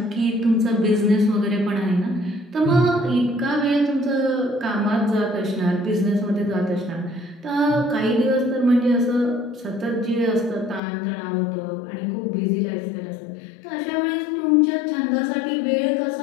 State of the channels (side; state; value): right; drops out; at 10.8 s